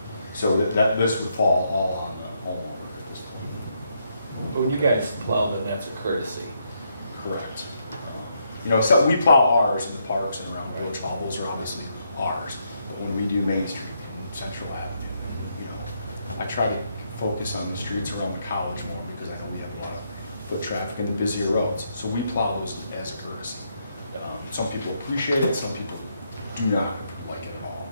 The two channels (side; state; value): both; inverted; correlation -0.77